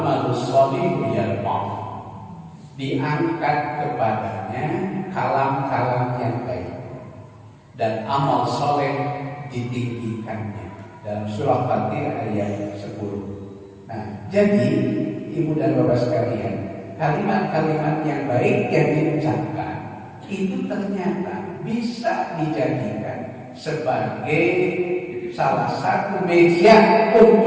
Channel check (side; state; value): both; identical; correlation 1.00